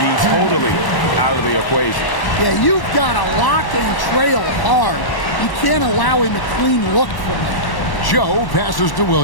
totally out of the equation. Yeah, you've got to lock and trail hard. You can't allow him a clean look from there. Joe passes to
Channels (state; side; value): late; right; 1.1 ms